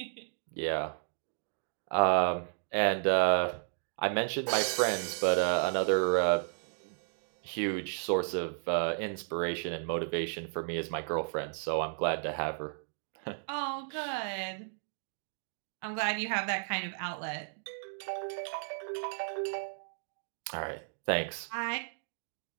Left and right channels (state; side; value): silent; left; digital silence